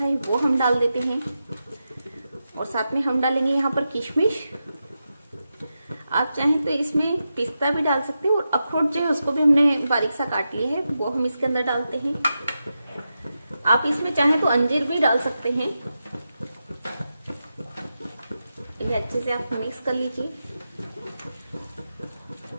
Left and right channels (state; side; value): inverted; both; correlation -0.89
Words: है, वो हम डाल देते हैं और साथ में हम डालेंगे यहाँ पर किशमिश। आप चाहें तो इसमें पिस्ता भी डाल सकते हैं और अखरोट जो है उसको भी हमने बारीक सा काट लिया है, वो हम इसके अंदर डालते हैं। आप इसमें चाहें तो अंजीर भी डाल सकते हैं। इन्हें अच्छे से आप मिक्स कर लीजिए